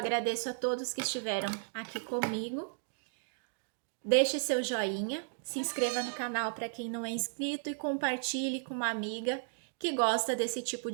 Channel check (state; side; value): silent; left; digital silence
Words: a todos que estiveram aqui comigo. Deixe seu joinha, se inscreva no canal para quem não é inscrito e compartilhe com uma amiga que gosta desse tipo